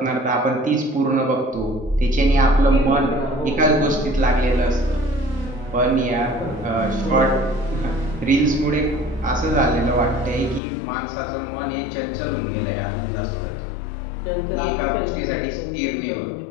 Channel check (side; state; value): right; drops out; at 10.6 s